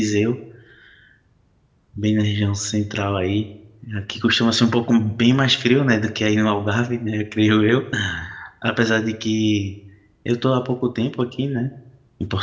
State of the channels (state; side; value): identical; both; correlation 1.00